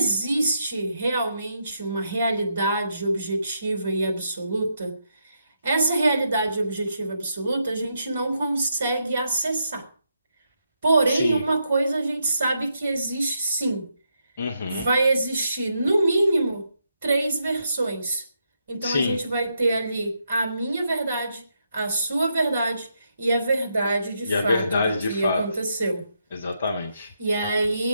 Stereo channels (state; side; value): inverted; both; correlation -0.81